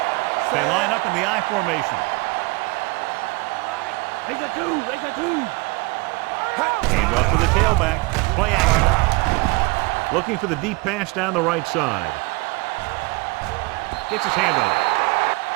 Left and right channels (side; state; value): left; quieter; 25.1 dB